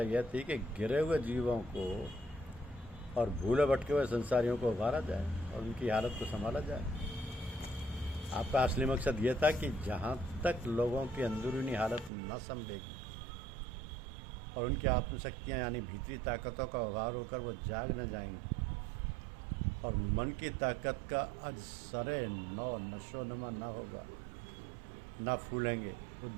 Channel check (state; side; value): drops out; left; at 12.1 s